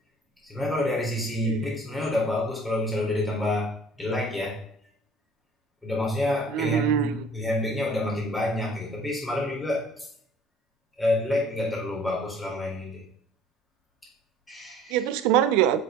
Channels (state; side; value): normal; both; correlation 0.51